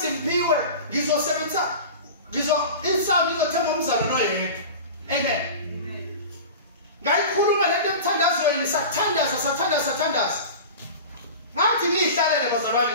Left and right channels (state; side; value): inverted; both; correlation -0.33